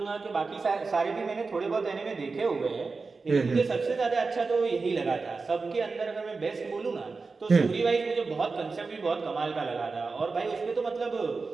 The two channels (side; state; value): left; quieter; 4.2 dB